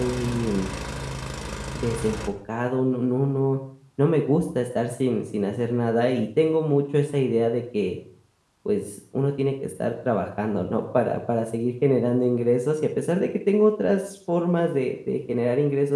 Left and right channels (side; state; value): both; identical; correlation 1.00